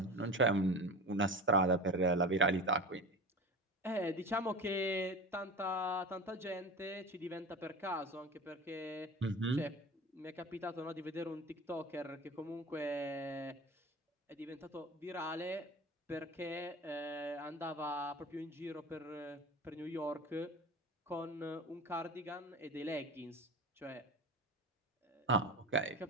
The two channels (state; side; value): normal; both; correlation 0.31